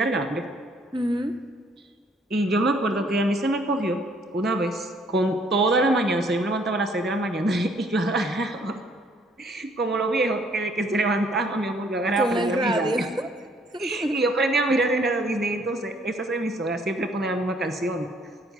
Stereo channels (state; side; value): normal; both; correlation 0.63